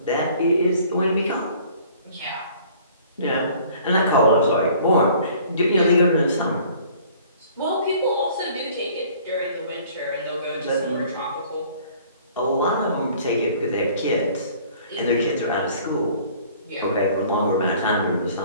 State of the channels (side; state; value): both; inverted; correlation -0.53